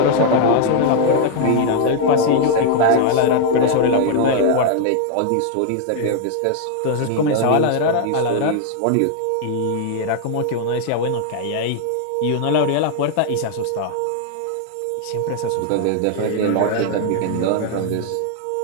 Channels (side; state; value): both; different; correlation 0.00